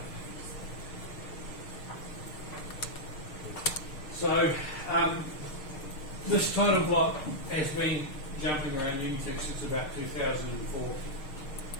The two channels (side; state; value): right; late; 6.5 ms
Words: So this title block has been jumping around Unitec since about 2004.